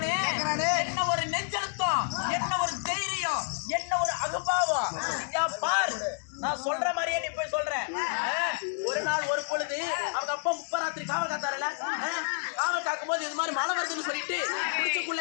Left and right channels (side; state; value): right; silent; digital silence